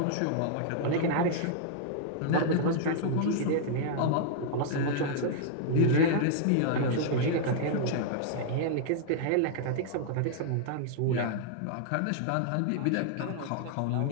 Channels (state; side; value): different; both; correlation -0.01